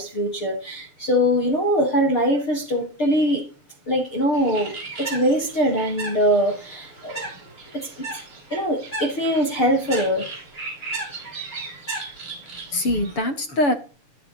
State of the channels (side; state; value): right; late; 6.9 ms